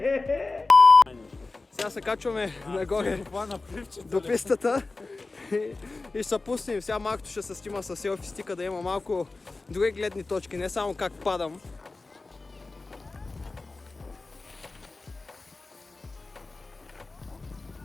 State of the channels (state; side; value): quieter; right; 3.5 dB